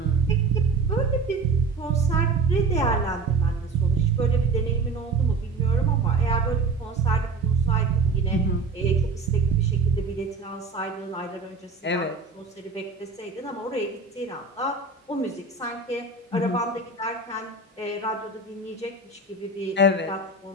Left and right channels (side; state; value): left; quieter; 4.1 dB